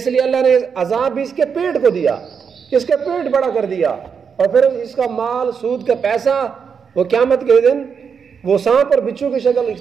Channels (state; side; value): quieter; left; 6.4 dB